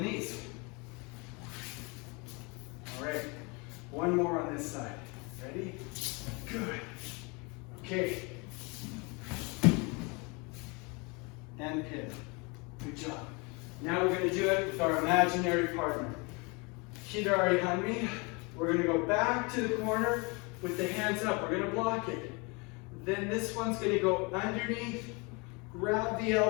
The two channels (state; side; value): quieter; right; 29.4 dB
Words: knees. All right. One more on this side. Ready? Good. Okay. And pin. Good job. Now we're going to do it with our imaginary partner. Hidari Hanmi. We're going to go back to the corner with the hands up. We're going to block it. Then this one's going to go underneath, grab the